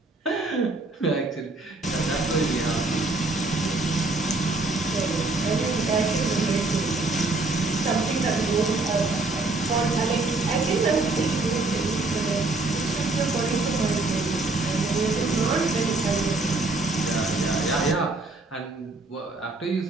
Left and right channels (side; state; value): left; quieter; 3.2 dB